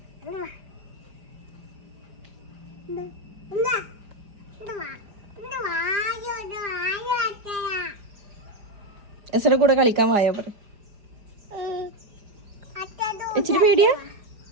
എസയുടെ കൂടെ കളിക്കാൻ വായോ പറ. ഇച്ചിരി പേടിയാ,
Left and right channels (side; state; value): left; late; 5.0 ms